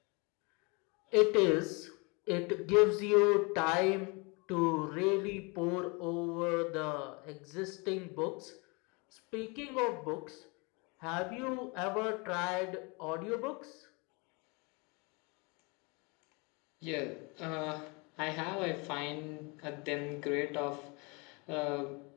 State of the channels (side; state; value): right; quieter; 29.6 dB